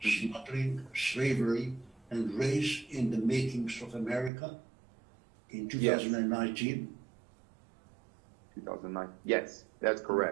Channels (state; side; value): drops out; left; at 4.3 s